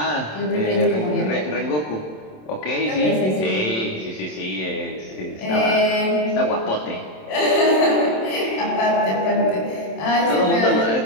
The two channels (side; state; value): right; late; 27 ms